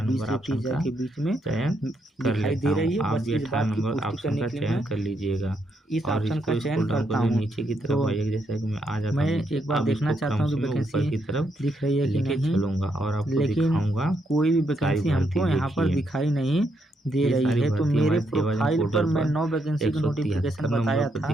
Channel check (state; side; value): normal; both; correlation 0.77